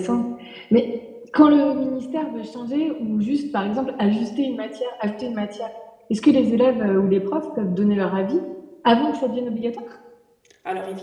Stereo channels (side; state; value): both; identical; correlation 1.00